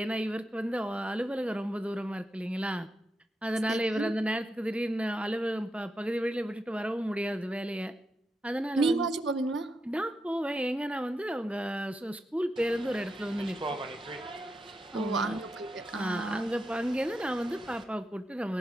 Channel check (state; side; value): normal; both; correlation 0.86